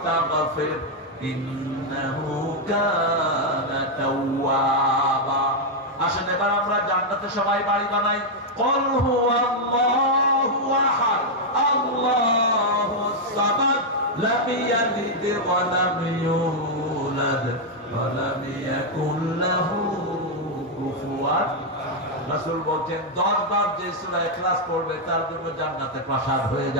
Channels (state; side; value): normal; both; correlation -0.01